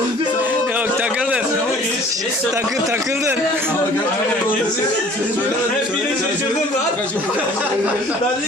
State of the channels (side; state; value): both; normal; correlation 0.51